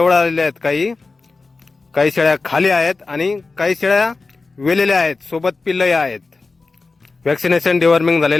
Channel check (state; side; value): quieter; right; 3.9 dB